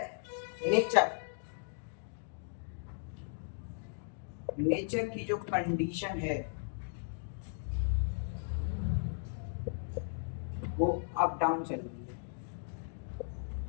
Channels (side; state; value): right; silent; digital silence